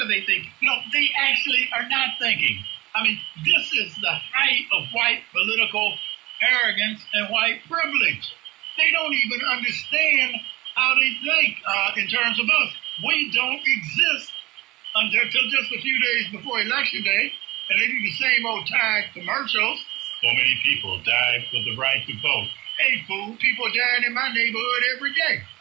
they thinking? No, they actually are not thinking. I mean, this is the height of white political arrogance and white privilege. They don't even understand how they think in terms of us. We don't exist until just a few days before Election Day, and they do the same old tired commercials. So many people died for the right to vote. Hey, fool, people dying in my neighborhood every day.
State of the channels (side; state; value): left; quieter; 19.3 dB